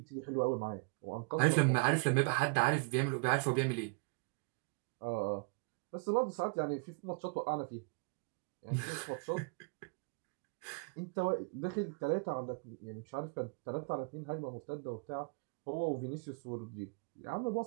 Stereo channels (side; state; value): left; quieter; 38.2 dB